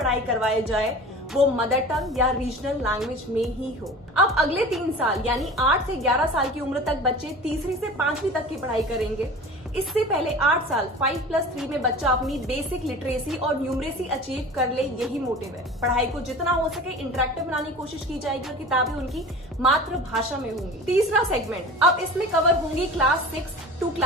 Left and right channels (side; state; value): both; normal; correlation 0.37